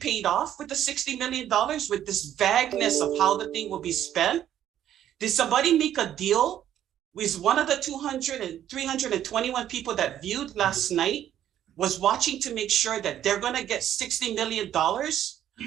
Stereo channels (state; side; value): quieter; left; 11.0 dB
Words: off with the $60 million with this vagueness of how the thing will be spent? Did somebody make a deal with one of the 321 people that viewed last night was watching to make sure that they're going to get $60 million